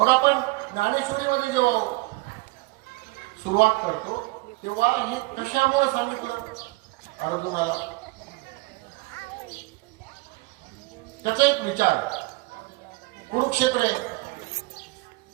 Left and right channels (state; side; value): quieter; left; 23.5 dB